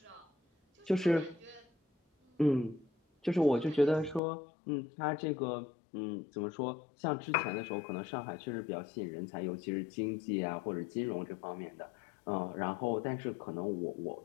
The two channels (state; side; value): drops out; right; at 4.2 s